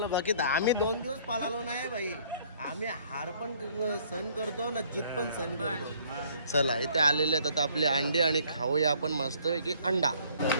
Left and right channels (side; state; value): both; inverted; correlation -0.60